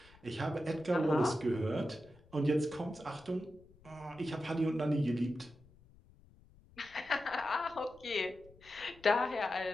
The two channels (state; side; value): noise; left; rumble, 25 dB below the sound